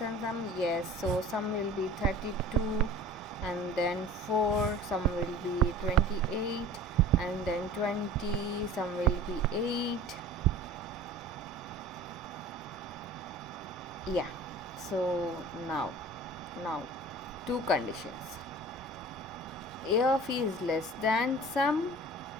sum. Yes, so sum will be 32, and then 4, sum will be 28, and then 20, sum will be 8. Yeah, so now two conditions. A of e is less than sum.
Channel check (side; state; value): both; normal; correlation 0.42